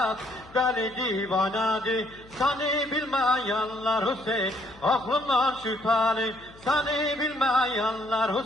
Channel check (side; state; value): left; noise; hum, 23 dB below the sound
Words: deli divanadı. Seni bilmeyenler Hüseyin aklından şüpheli. Seni bilmeyenler